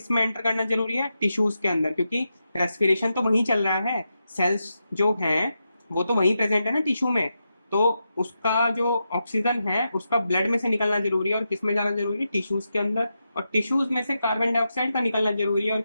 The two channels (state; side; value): inverted; both; correlation -0.87